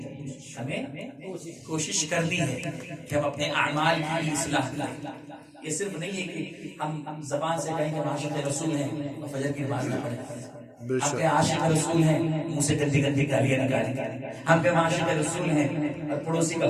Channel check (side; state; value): both; identical; correlation 1.00